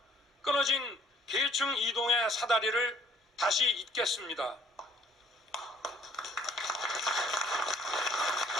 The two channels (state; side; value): normal; both; correlation 0.61